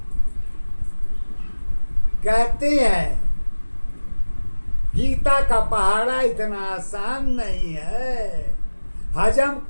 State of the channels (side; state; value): both; inverted; correlation -1.00